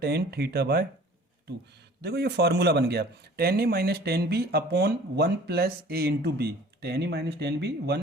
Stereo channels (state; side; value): normal; both; correlation 0.49